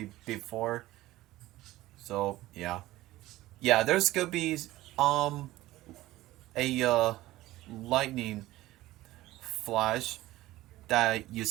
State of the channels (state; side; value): quieter; left; 16.7 dB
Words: before, so yeah, There's gonna be um a lightning flash that you